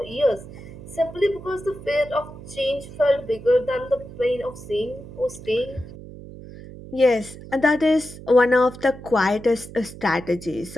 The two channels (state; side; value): noise; right; hum, 15 dB below the sound